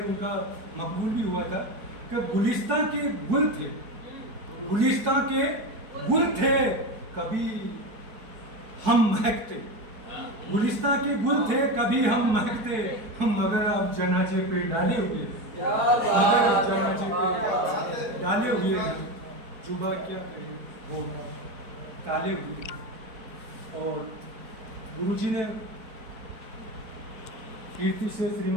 उनका मकबूल भी हुआ था कि गुलिस्तां के गुल थे, गुलिस्तां के गुल थे, कभी हम महकते, गुलिस्तां के गुल थे कभी हम महकते। हम मगर अब जनाजे पे डाले हुए, मगर जनाजे पे डाले हुए हैं। जुबा क्या कहे वो ताले हुए। और गुरुजी ने कीर्ति से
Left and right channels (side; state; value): left; late; 4.5 ms